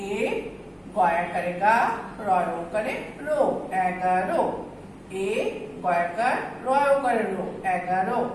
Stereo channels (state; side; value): identical; both; correlation 1.00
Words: এ গয়াকারে গা রয় ওকারে রো 11। এ গয়াকার রয় ওকারে রো 11।